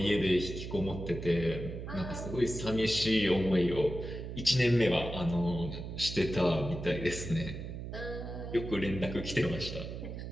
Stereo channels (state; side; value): noise; right; hum, 8 dB below the sound